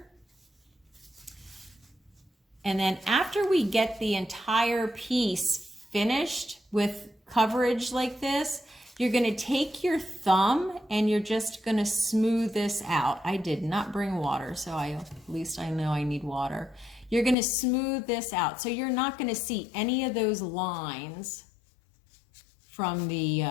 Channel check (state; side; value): drops out; right; at 17.4 s